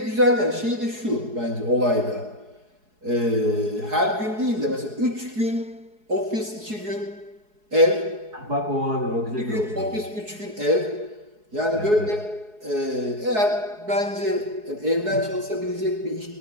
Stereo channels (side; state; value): left; late; 4.7 ms